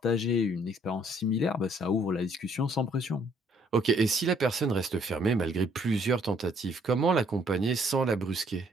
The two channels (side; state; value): both; normal; correlation 0.64